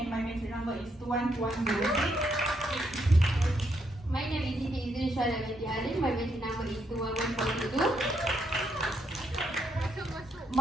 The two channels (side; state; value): both; normal; correlation 0.76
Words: my matric number is 21206. My name is Siti Izrin Syara binti Halim. My matric number is 21422.